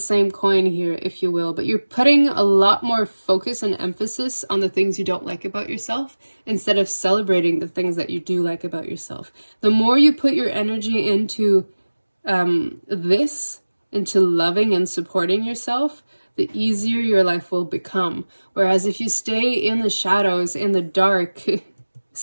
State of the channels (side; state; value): both; inverted; correlation -1.00